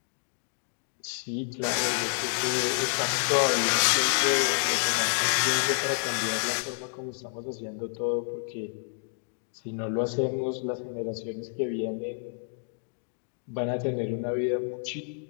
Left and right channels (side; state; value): right; silent; digital silence